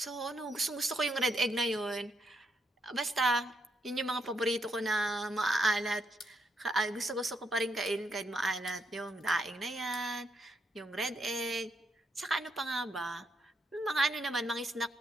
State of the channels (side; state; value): both; normal; correlation 0.77